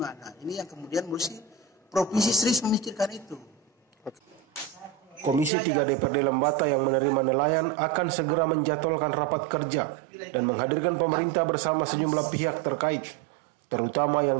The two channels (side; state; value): left; drops out; at 5.5 s